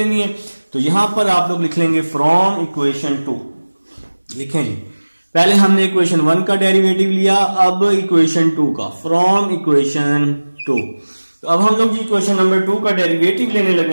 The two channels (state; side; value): inverted; both; correlation -1.00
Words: है। तो यहां पर आप लोग लिख लेंगे फ्रॉम इक्वेशन 2, लिखें जी, पहले हमने इक्वेशन 1 का डेरिवेटिव लिया, अब इक्वेशन 2 का, फ्रॉम इक्वेशन 2। तो अब हम लोग जी इक्वेशन नंबर 2 का डेरिवेटिव लेने लगे